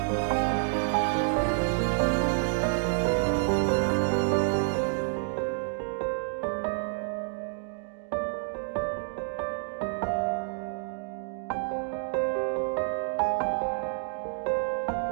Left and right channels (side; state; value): left; silent; digital silence